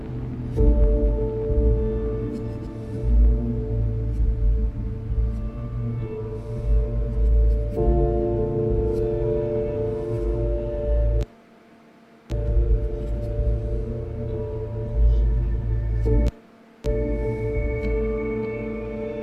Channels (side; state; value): both; identical; correlation 1.00